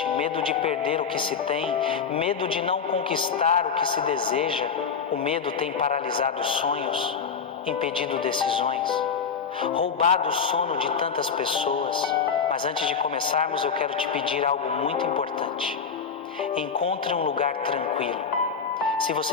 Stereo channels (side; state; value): right; quieter; 6.2 dB